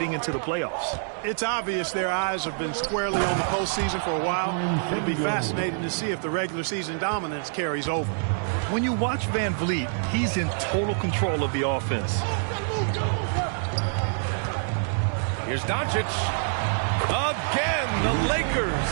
into the playoffs. It's obvious their eyes have been squarely on the postseason for a while. It'll be fascinating to see if the regular season dominance carries over. When you watch Van Vliet, he's in total control of the offense. Here's Doncic. Again, the Lakers.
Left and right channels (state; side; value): silent; left; digital silence